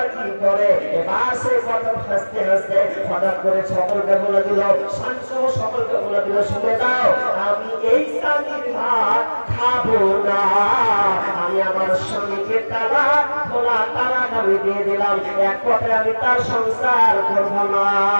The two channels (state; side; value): inverted; both; correlation -1.00